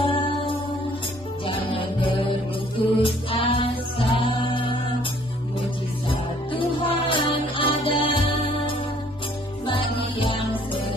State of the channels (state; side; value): normal; both; correlation 0.60